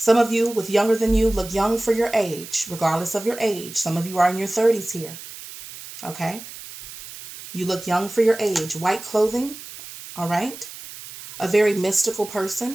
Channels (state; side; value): noise; right; hiss, 14 dB below the sound